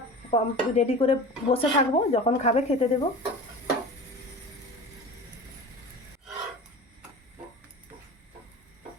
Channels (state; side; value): normal; both; correlation 0.35